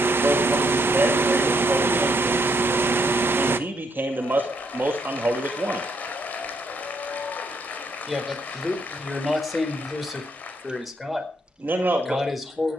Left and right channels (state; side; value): normal; both; correlation 0.74